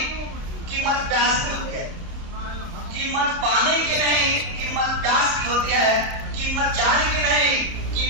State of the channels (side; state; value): left; late; 30 ms